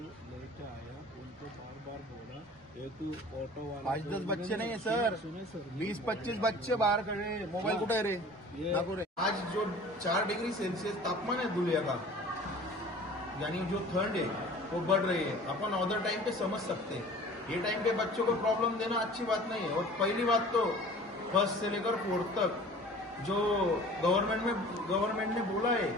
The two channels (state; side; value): normal; both; correlation 0.45